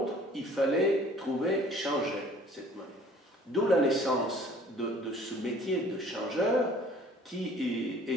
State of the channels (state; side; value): normal; both; correlation 0.53